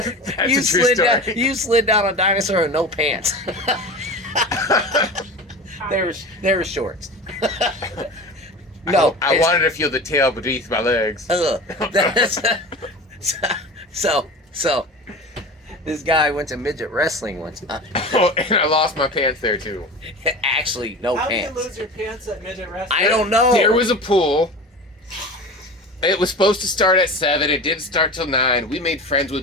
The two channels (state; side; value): normal; both; correlation 0.32